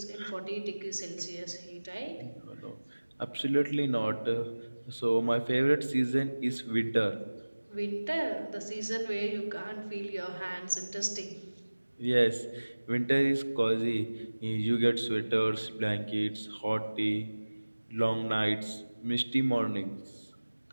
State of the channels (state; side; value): inverted; both; correlation -1.00